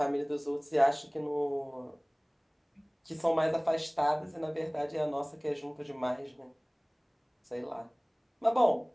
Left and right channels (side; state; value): both; identical; correlation 1.00